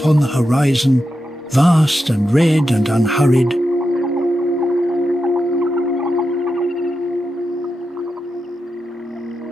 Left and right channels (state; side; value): normal; both; correlation 0.88